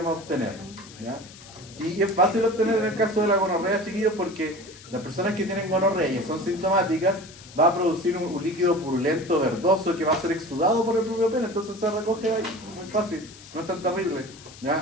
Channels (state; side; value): noise; left; hiss, 19 dB below the sound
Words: obtener. ¿Ya? Y es fácil obtener en el caso de la gonorrea, chiquillos, porque las personas que tienen gonorrea y son sintomáticas va a producir un líquido purulento, verdoso, que va a ser exudado por el propio pene, entonces se recoge ahí, muy fácil, no es tan terrible.